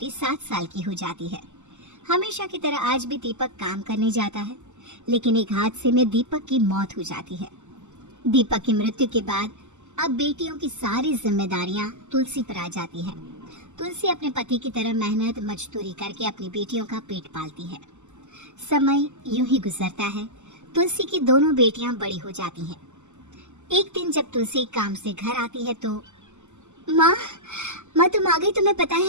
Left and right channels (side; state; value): left; late; 0.84 ms